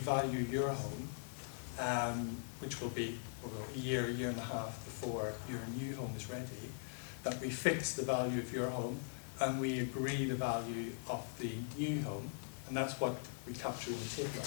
your home, which will be a year and a half before your new home is ready, that we fix the value of your home and we agree the value of the new home, and that's what we capture in the table.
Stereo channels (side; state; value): right; silent; digital silence